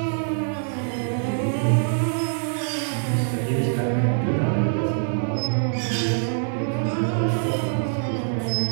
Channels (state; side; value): silent; left; digital silence